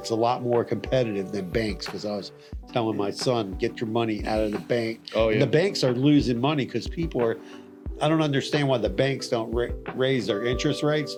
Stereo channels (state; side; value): identical; both; correlation 1.00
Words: a lot more competitive than banks. Because I was telling my son, get your money out of the bank. Oh yeah. And the banks are losing money because people are. I don't understand why the banks don't raise their interest rates.